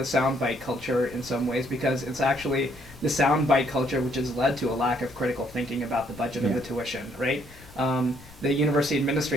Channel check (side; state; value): left; noise; rumble, 22 dB below the sound